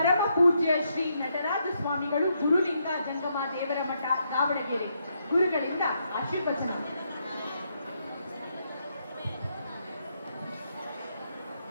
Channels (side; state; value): both; inverted; correlation -0.78